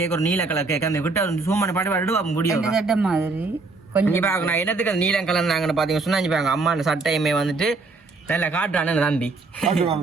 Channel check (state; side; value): quieter; left; 3.8 dB